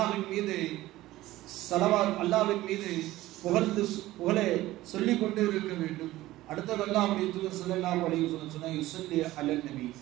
மீது ஸலவாத், அல்லாஹ்வின் மீது புகழை சொல்லிக் கொண்டே இருக்க வேண்டும். அடுத்தது அல்லாஹ்வுடைய தூதர் ஸல்லல்லாஹு அலைஹி வஸல்லம் சொன்னார், யுஸல்லி அலன் நபி,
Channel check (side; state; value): left; quieter; 16.5 dB